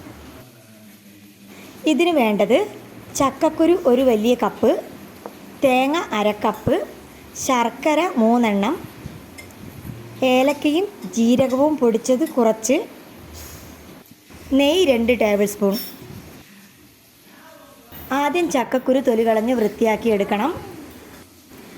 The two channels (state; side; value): identical; both; correlation 1.00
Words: ഇതിന് വേണ്ടത് ചക്കക്കുരു 1 വലിയ കപ്പ്, തേങ്ങ 1/2 കപ്പ്, ശർക്കര 3 എണ്ണം, ഏലക്കയും ജീരകവും പൊടിച്ചത് കുറച്ച്, നെയ്യ് 2 ടേബിൾ സ്പൂൺ. ആദ്യം ചക്കക്കുരു തൊലി കളഞ്ഞ് വൃത്തിയാക്കി എടുക്കണം.